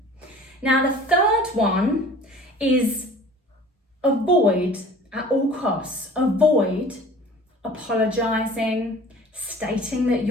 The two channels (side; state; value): both; normal; correlation 0.45